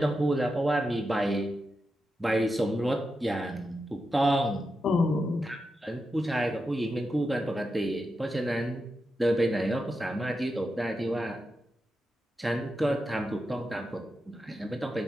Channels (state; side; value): normal; both; correlation 0.88